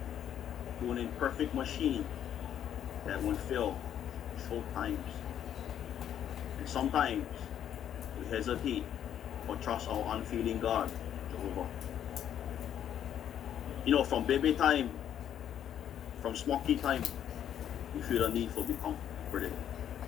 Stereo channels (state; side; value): quieter; right; 10.0 dB